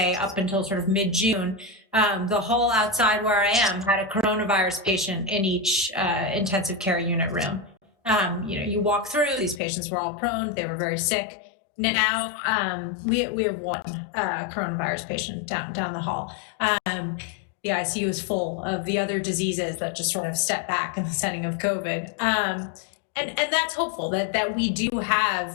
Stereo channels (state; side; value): drops out; right; at 9.6 s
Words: up until sort of mid-June, the hall outside where I am had a coronavirus patient in each intensive care unit room. You walk through, these patients were all prone, they were very sick. Now we have one coronavirus patient down the hall. The ICU is full of the other diseases that just sort of step back in the setting of COVID. And that's hopeful that we do have,